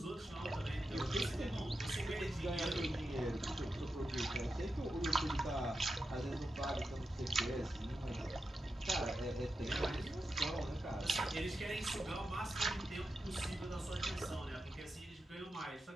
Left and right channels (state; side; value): normal; both; correlation 0.89